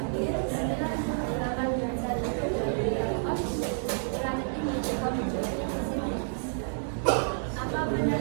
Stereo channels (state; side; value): silent; left; 58 dB below the other